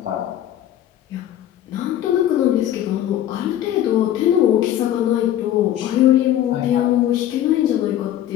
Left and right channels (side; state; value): right; quieter; 11.8 dB